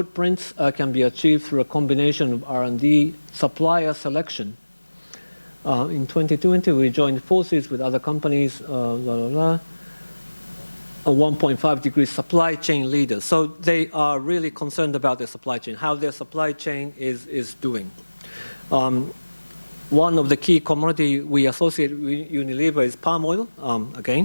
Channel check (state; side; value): inverted; both; correlation -1.00